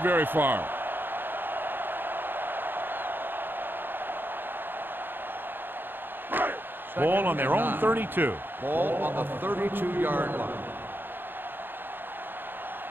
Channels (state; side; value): late; left; 0.097 ms